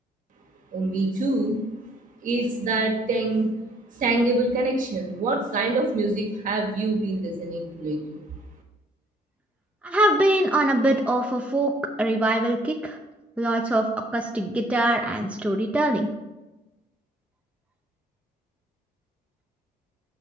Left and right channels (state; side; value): normal; both; correlation 0.63